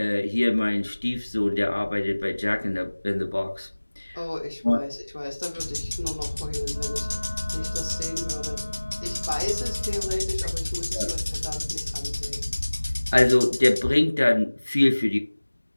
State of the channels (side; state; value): both; inverted; correlation -1.00